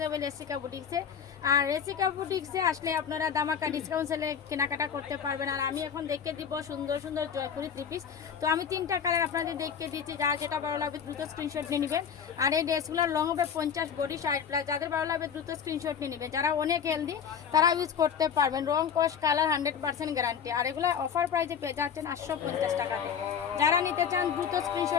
হবে রেসিকা বুটিক্সে। আর রেসিকা বুটিক্সে আসলে আপনারা দামাকা ডিসকাউন্ট সেলে কেনাকাটা করতে পারবেন। আর আমি এখন দেখে দিব সুন্দর সুন্দর জয়পুরি থ্রি পিস। তো আমি 3টা কালার আপনাদের দেখে দিচ্ছি, যারা যেটা ভালো লাগবে দ্রুত স্ক্রিনশট নিয়ে নেবেন। আর এই ড্রেসগুলো লং হবে 50, বডি 60+। যাদের ভালো লাগবে দ্রুত স্ক্রিনশট নিয়ে নেবেন। যারা অনেক হেলদি তারা ইউজ করতে পারবেন। রং, কস, কালার 100% গ্যারান্টি। আর এগুলো অফার প্রাইসে পেয়ে যাচ্ছেন 850 টাকাতে। যারা নিতে চান দ্রুত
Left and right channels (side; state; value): right; quieter; 7.5 dB